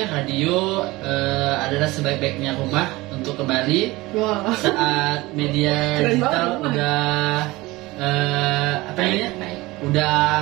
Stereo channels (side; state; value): left; quieter; 20.5 dB